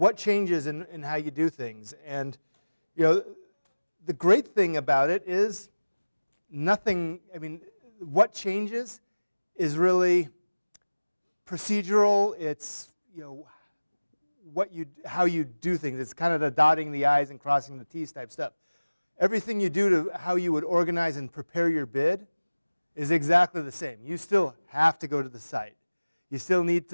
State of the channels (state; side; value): inverted; both; correlation -1.00